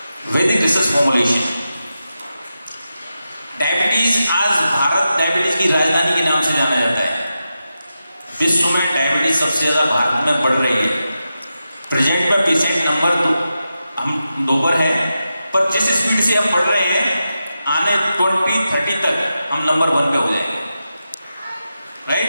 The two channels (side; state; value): both; inverted; correlation -0.90